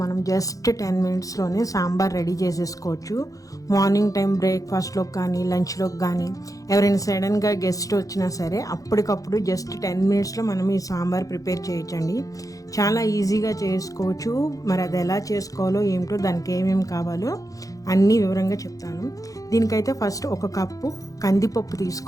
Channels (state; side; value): late; right; 0.17 ms